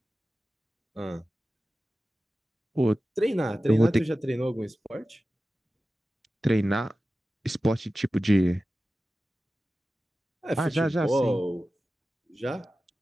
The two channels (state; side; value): normal; both; correlation 0.95